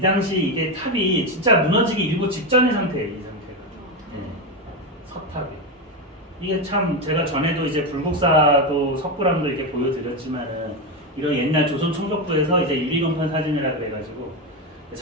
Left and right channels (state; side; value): normal; both; correlation 0.12